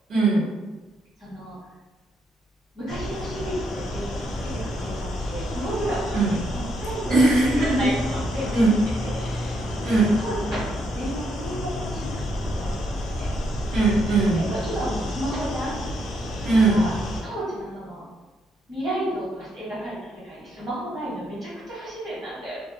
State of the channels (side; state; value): both; normal; correlation 0.76